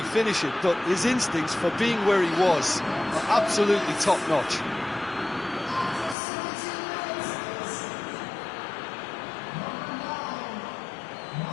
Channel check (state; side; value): drops out; right; at 6.2 s